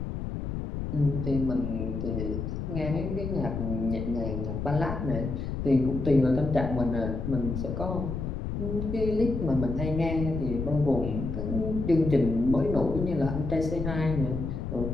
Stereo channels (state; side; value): noise; left; rumble, 4 dB below the sound